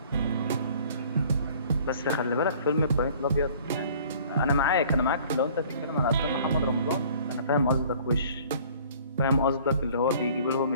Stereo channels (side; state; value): both; inverted; correlation -0.53